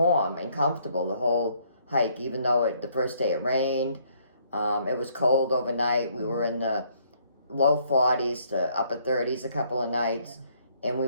and comfortable the whole hike, even though the first day it rained. It was cold overnight. We were in the low 40s to upper 30s a couple of nights, and we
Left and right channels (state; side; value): inverted; both; correlation -0.66